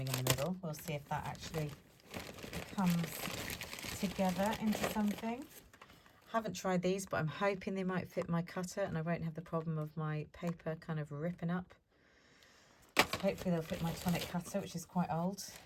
in the middle. We'll see if that actually comes together into something. Haven't tried these, but I'm hoping they might fit my cutter and I won't have the problem of my paper kind of ripping up. So hopefully they'll fit my tonic cutter, which is quite old.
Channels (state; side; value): identical; both; correlation 1.00